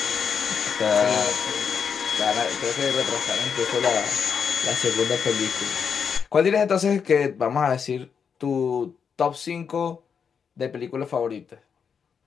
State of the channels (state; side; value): quieter; right; 6.6 dB